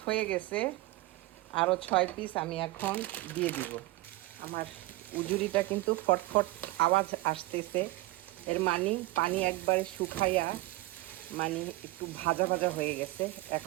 হয়ে গেছে, আরও 6 পিস আমি এখন দিয়ে দিব। আমার উজুরিটা কিন্তু ফটফট আওয়াজ আসতেছে, এর মানে পানি একবারে শুকাইয়া মানে একটু ভাজা ভাজা হয়ে গেছে।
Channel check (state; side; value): quieter; left; 19.2 dB